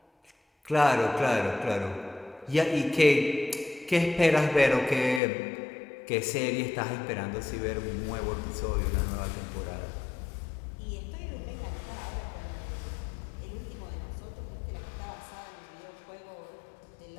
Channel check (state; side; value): drops out; right; at 5.2 s